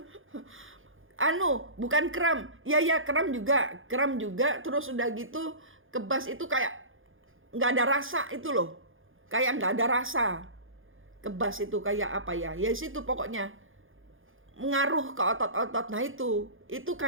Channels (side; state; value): left; late; 0.58 ms